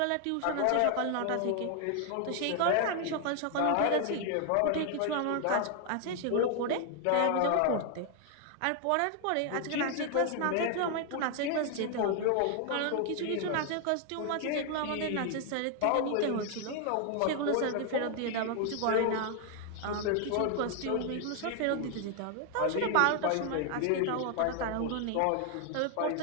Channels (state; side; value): different; both; correlation 0.00